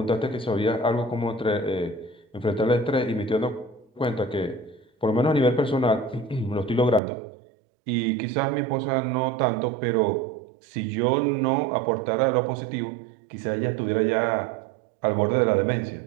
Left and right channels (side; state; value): left; drops out; at 7.0 s